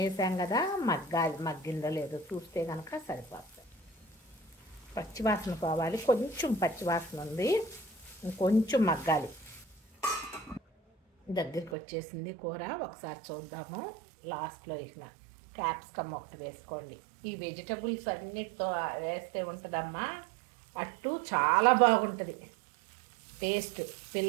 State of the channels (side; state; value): left; drops out; at 11.8 s